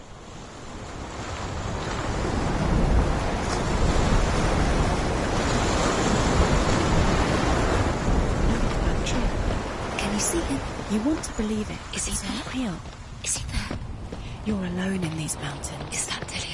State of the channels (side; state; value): both; identical; correlation 1.00